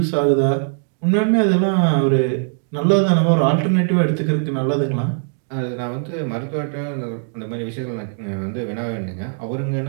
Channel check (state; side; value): silent; left; digital silence